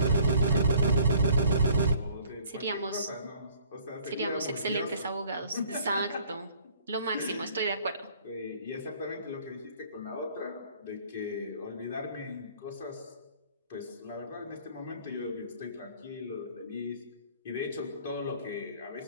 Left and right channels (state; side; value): inverted; both; correlation -0.56